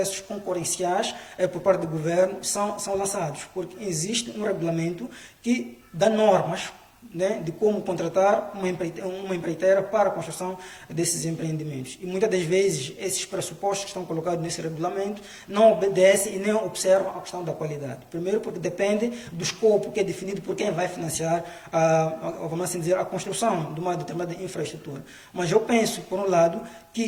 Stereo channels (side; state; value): both; identical; correlation 1.00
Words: concorrenciais por parte do governo são lançados, porque existe um regulamento que dá normas, né, de como contratar uma empreiteira para a construção desses empreendimentos. E muitas das vezes esses pressupostos que estão colocados nesse regulamento não obedecem e nem observam a questão da qualidade. Primeiro porque depende do escopo que é definido por quem vai financiar vamos assim dizer, a construção de uma determinada infraestrutura. Mas eu penso, por um lado,